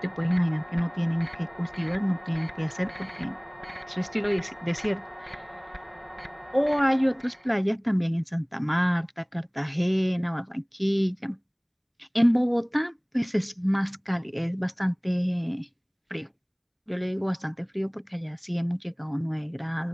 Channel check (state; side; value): identical; both; correlation 1.00